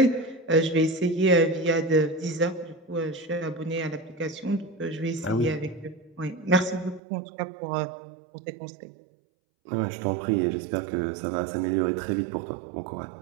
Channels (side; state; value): left; drops out; at 7.0 s